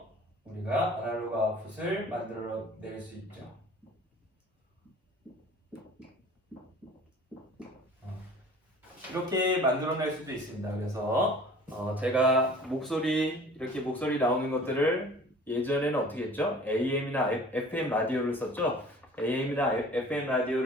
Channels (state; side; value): normal; both; correlation 0.47